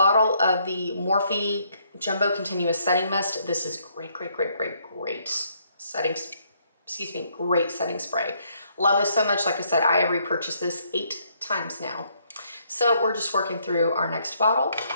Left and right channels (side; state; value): both; inverted; correlation -0.70